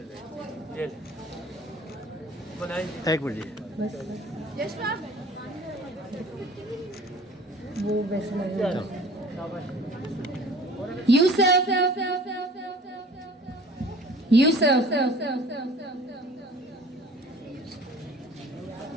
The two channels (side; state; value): both; normal; correlation 0.47